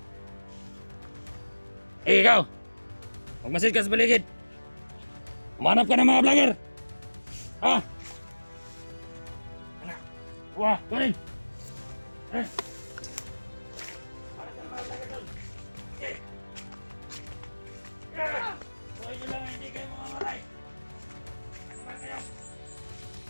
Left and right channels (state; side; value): inverted; both; correlation -1.00